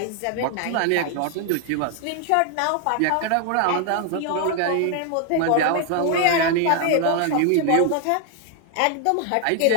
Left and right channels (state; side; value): different; both; correlation 0.00